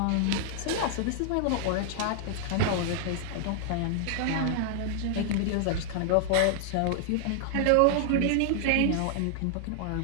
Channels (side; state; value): both; different; correlation -0.01